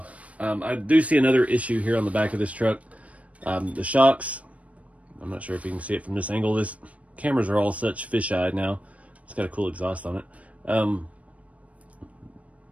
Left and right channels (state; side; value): late; left; 0.066 ms